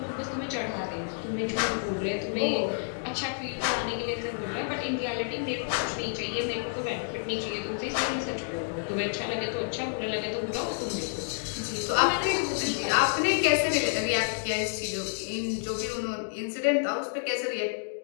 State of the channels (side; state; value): right; silent; digital silence